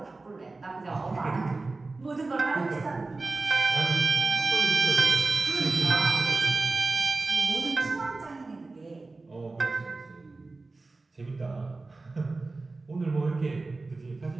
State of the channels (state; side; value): quieter; left; 3.5 dB